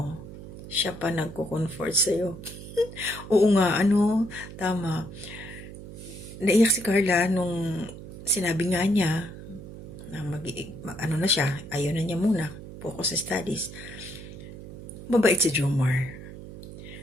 siya pa nagko-comfort sa'yo. Oo nga, tama. Naiyak si Carla nung sinabi nga niya na na siya, ayaw na niya muna, focus sa studies. Mabait si Jomar.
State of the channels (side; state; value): right; noise; hum, 13 dB below the sound